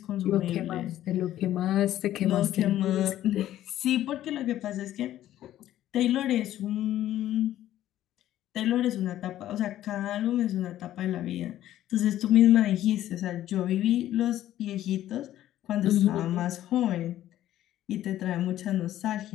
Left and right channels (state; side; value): quieter; right; 13.0 dB